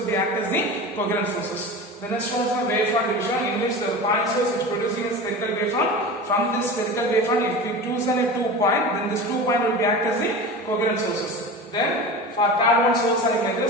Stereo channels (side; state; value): both; normal; correlation 0.31